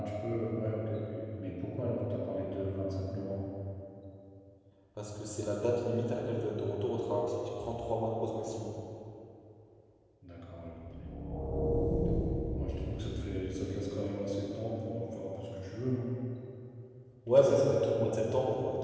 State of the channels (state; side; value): identical; both; correlation 1.00